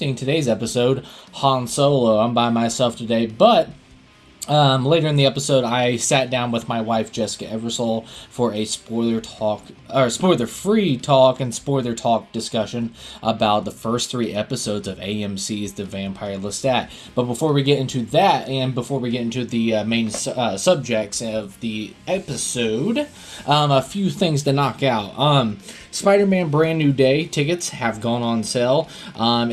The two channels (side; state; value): both; identical; correlation 1.00